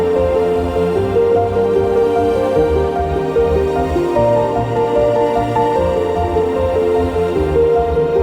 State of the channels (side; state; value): both; identical; correlation 1.00